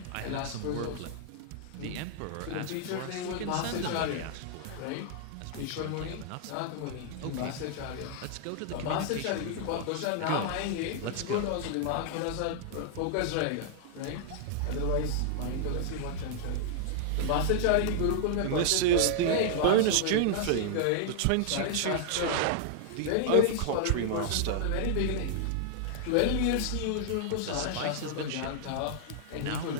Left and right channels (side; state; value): both; different; correlation -0.01